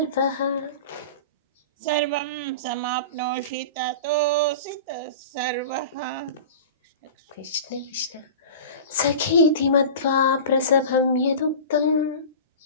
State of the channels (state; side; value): inverted; both; correlation -0.33